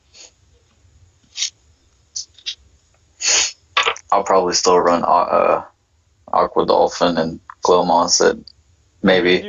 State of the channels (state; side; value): identical; both; correlation 1.00